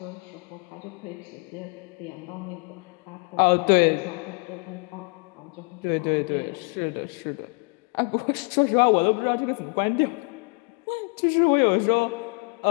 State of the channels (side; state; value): right; quieter; 32.8 dB